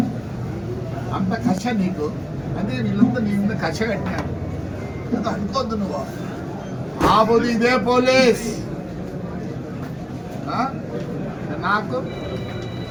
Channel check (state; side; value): identical; both; correlation 1.00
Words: అంత కష నీకు. అదే వీళ్ళంతా నీ మీద కష కట్టినారు. అనుకోద్దు నువ్వు. ఆ పోదు ఇదే పోలీస్ నాకు